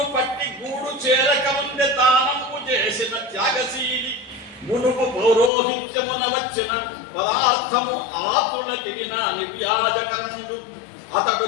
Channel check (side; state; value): right; drops out; at 5.5 s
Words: పట్టి గూడు చేరకముందే దానము చేసిన త్యాగశీలి మునుపు పౌరోహిత్యమున వచ్చిన పదార్థము ఆతులకిన నిర్యాజకరణుడు అతడు